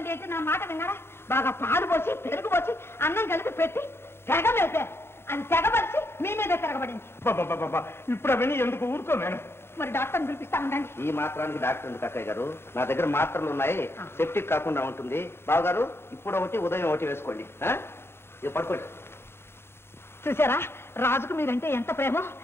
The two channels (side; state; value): right; late; 0.12 ms